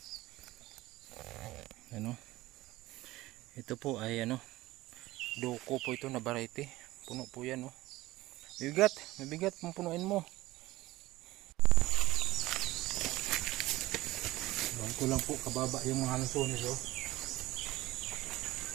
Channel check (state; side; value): quieter; left; 17.9 dB